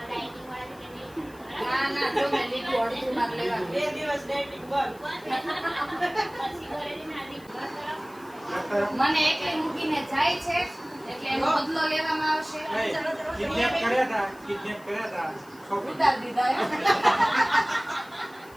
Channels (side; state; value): left; noise; hiss, 25 dB below the sound